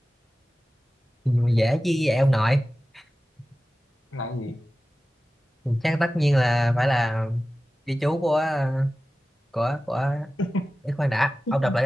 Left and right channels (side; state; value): both; normal; correlation 0.95